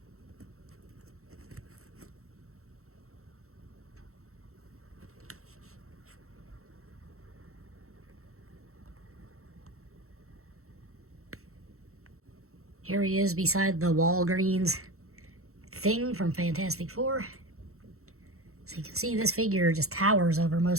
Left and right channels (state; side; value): late; left; 0.63 ms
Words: Here he is beside the Walgreens thing from Fantastic Four. So you can see this figure just towers over